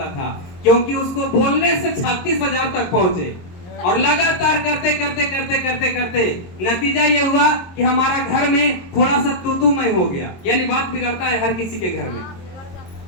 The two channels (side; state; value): right; late; 22 ms